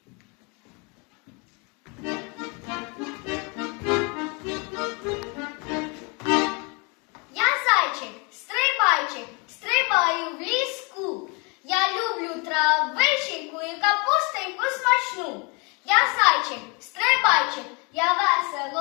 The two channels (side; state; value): right; quieter; 31.3 dB